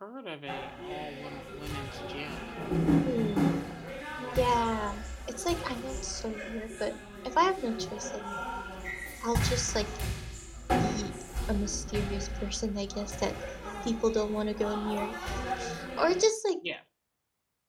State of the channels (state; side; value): identical; both; correlation 1.00